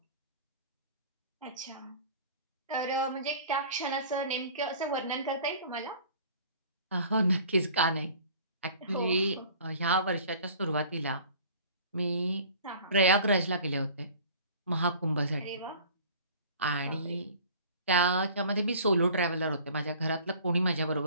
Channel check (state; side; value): inverted; both; correlation -0.46